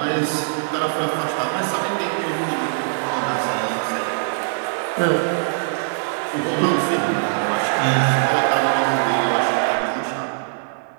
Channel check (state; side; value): silent; left; 60 dB below the other